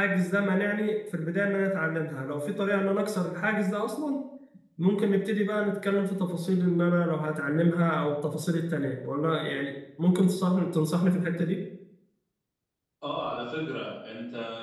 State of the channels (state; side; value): identical; both; correlation 1.00